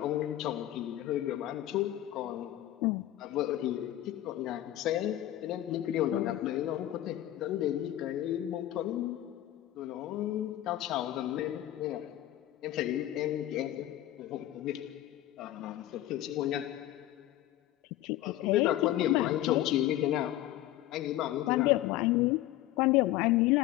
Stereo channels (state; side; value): quieter; right; 14.1 dB